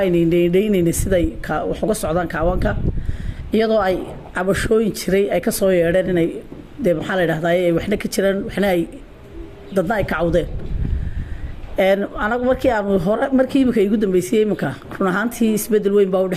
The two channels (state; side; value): identical; both; correlation 1.00